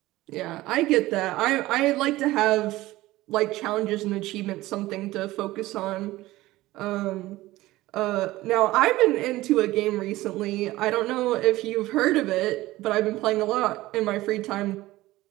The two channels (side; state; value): left; quieter; 17.6 dB